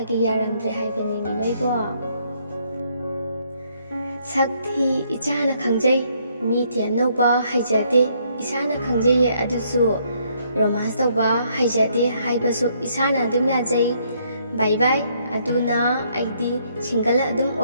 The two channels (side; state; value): both; inverted; correlation -0.70